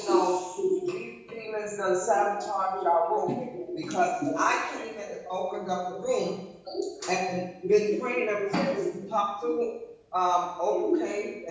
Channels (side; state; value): both; identical; correlation 1.00